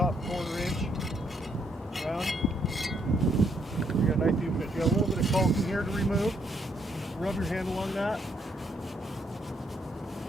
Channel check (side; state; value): both; normal; correlation 0.72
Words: 1/4 inch crown. You got a nice even bit. You got a little bit of caulking here to remove. Just rub your hand along that.